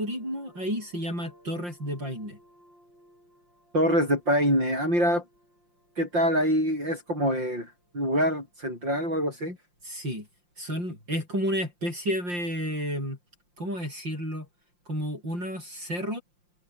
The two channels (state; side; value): late; left; 5.7 ms